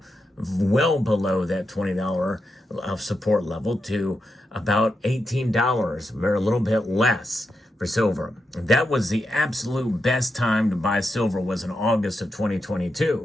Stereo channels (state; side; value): normal; both; correlation 0.86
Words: well below that $20 of support level to about $18, or a little bit less for silver. That was the absolute best time to buy silver, was in August of